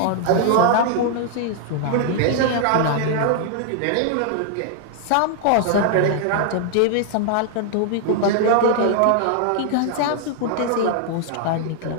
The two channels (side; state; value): both; different; correlation 0.00